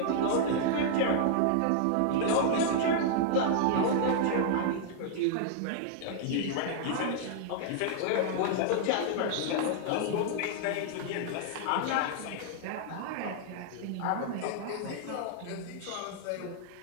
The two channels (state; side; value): different; both; correlation -0.01